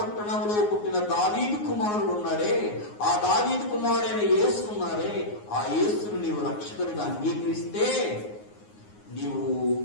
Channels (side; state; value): right; late; 9.6 ms